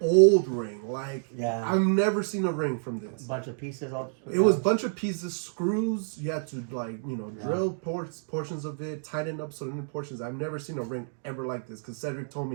ring. Like, Yeah. I've never seen a ring from this. Bunch of pieces. All. It was a bunch of pieces, screws. You had to drill portions of it, tighten up certain portions. I've never seen a ring ever like this. Because Cedric told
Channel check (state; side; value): silent; left; digital silence